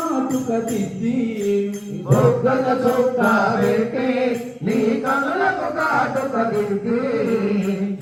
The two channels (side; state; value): both; identical; correlation 1.00